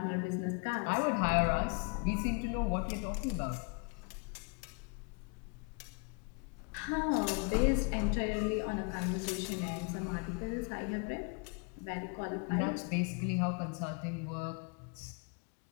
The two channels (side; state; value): right; quieter; 33.5 dB